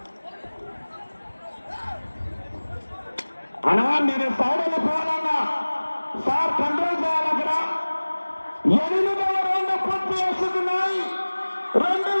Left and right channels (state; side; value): inverted; both; correlation -1.00